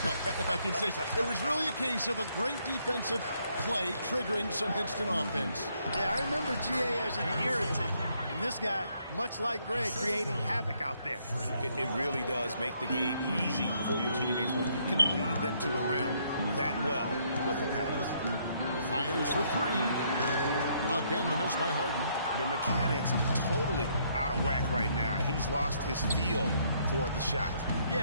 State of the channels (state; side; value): inverted; both; correlation -0.70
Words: but if I can say so, it was really a case of a great defensive play triggering some instant offense. Yeah, I remember GA as an irritant, and this guy, much like Greg, creating havoc out there. It really does make the game easy for your teammates when you can lead them to the rim that well with a pass. Fires for three. Again, the miss by Harden. The mechanics totally out of whack right now. He's lost his feel for the shot.